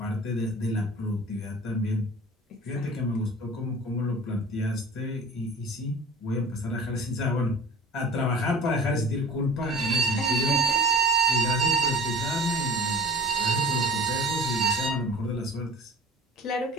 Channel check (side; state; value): both; normal; correlation 0.41